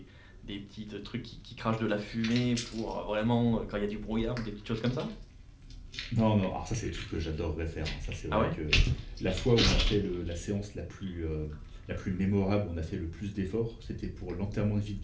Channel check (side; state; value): both; identical; correlation 1.00